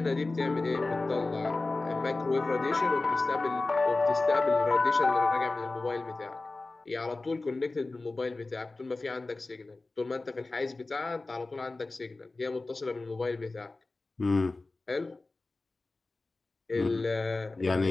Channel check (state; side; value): quieter; right; 3.3 dB